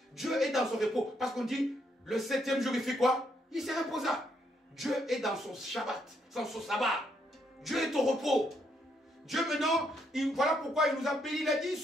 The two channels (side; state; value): both; normal; correlation 0.75